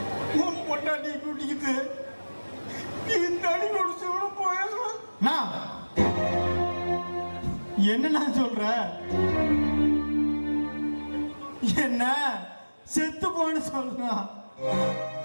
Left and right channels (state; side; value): inverted; both; correlation -1.00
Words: உன் பொண்டாட்டி கூட்டிக்கிட்டு நீ தனி குடிச்சு போயிடலாம். என்னண்ணா சொல்ற? என்ன செத்து போன்னு சொல்றான்.